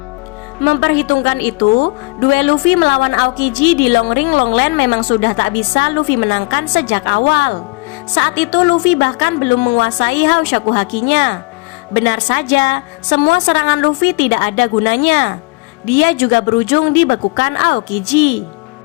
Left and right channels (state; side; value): quieter; right; 26.4 dB